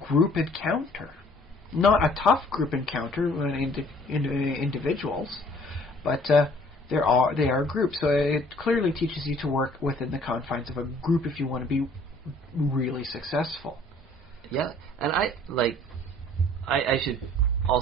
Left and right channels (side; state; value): both; normal; correlation 0.56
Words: encounter. Not a tough group encounter individuals, but they are groups. So it clearly teaches you to work within the confines of a group if you want to be really successful. Yeah, and I should